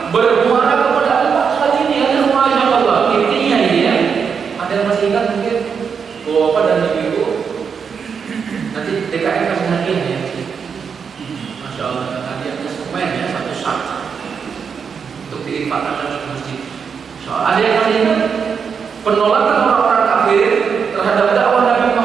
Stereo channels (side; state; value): left; quieter; 6.4 dB